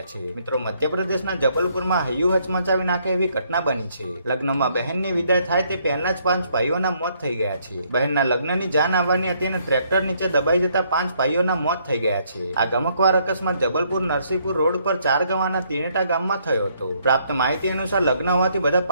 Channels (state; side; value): inverted; both; correlation -0.69